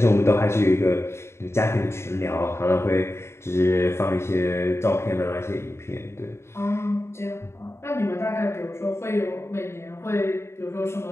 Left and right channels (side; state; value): right; late; 0.13 ms